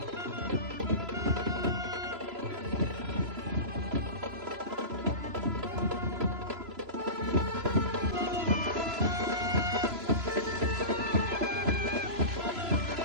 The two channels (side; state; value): left; late; 3.0 ms